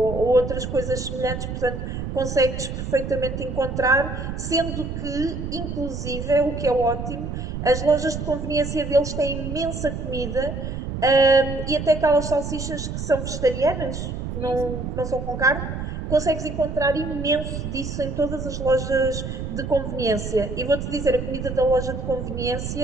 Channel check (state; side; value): noise; right; rumble, 5 dB below the sound